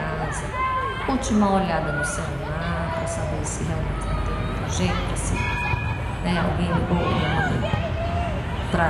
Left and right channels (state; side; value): identical; both; correlation 1.00